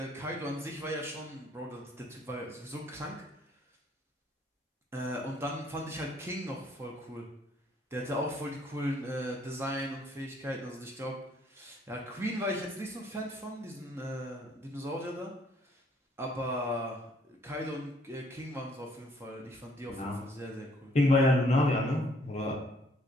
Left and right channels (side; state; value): both; normal; correlation 0.64